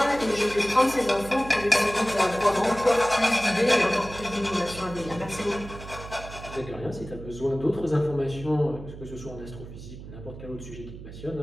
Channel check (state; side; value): noise; right; hum, 13 dB below the sound